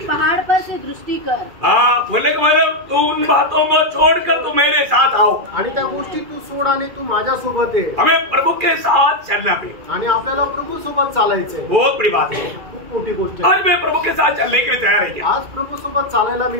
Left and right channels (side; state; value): left; late; 2.3 ms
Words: पहाड़ पर से दृष्टी कर। बोलने का मतलब तू उन बातों को छोड़कर तू मेरे साथ आओ आणि त्या गोष्टी तू सोड आणि तू माझ्या सोबत आहे। हमें प्रभु के साथ चलना पे आणि आपल्याला प्रभू सोबत चालायचंय। बहुत बड़ी बात है, खूप मोठी गोष्ट आहे। आज मैं प्रभु के साथ चलने के लिए तैयार है क्या? आज प्रभु सोबत चालायला मी